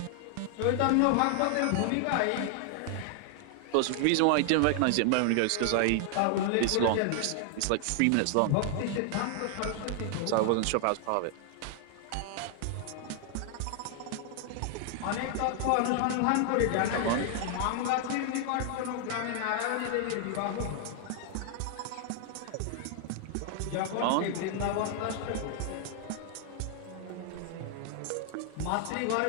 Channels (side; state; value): both; different; correlation 0.00